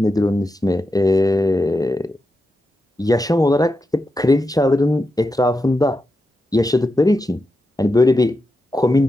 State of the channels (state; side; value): normal; both; correlation 0.88